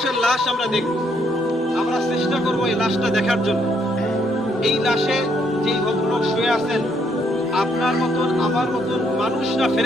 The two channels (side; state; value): both; normal; correlation 0.72